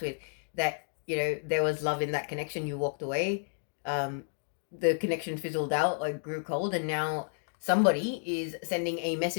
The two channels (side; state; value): right; silent; digital silence